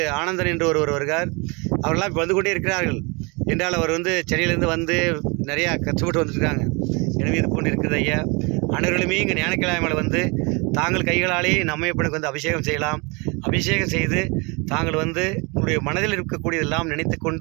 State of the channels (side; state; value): left; quieter; 29.2 dB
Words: ஆனந்தன் என்று ஒருவர் வருகிறார். அவரெல்லாம் இப்போ வந்து கொண்டே இருக்கிறார்கள். என்றால் அவர் வந்து சென்னையிலேருந்து வந்து நிறையா கஷ்டப்பட்டு வந்துருக்காங்க. எனவே இது போன்று இருக்குது ஐயா. அனைவர்களுமே இங்கே ஞானக்கிழமையில் வந்து தாங்கள் கைகளாலே நம்மையப்பனுக்கு வந்து அபிஷேகம் செய்யலாம். அபிஷேகம் செய்து தாங்கள் வந்து உங்களுடைய மனதில் இருக்கக்கூடியதெல்லாம் நினைத்து